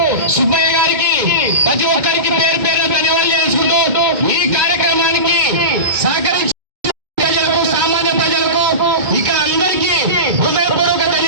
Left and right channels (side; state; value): left; late; 2.2 ms